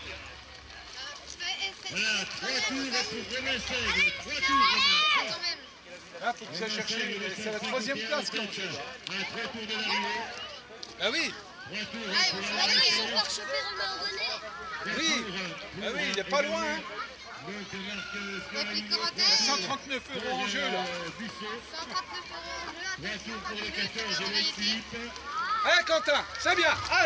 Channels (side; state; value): both; identical; correlation 1.00